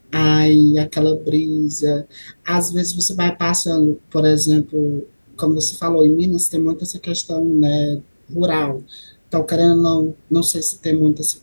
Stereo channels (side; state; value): both; inverted; correlation -1.00